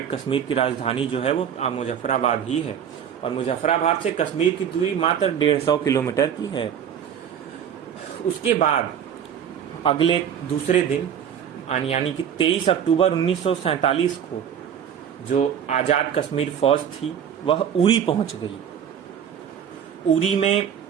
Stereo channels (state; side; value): quieter; left; 8.6 dB